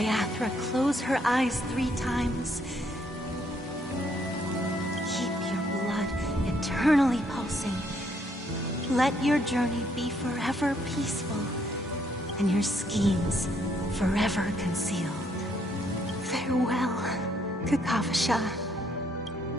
close her eyes 3 times. Keep your blood eternally pulsing. Let your journey be forever peaceful, and your schemes forever concealed. Farewell, Kakavasha.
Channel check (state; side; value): normal; both; correlation 0.70